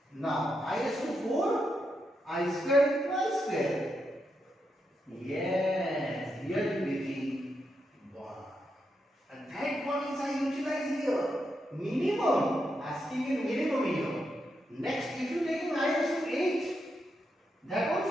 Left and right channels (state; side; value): normal; both; correlation 0.83